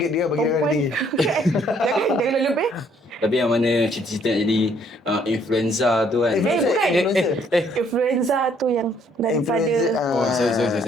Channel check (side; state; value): both; normal; correlation 0.65